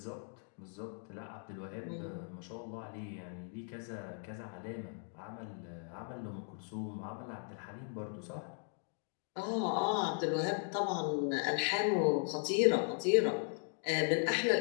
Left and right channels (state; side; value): silent; right; 53 dB below the other